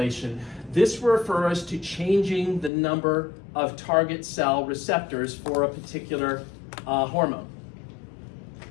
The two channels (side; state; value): right; drops out; at 2.7 s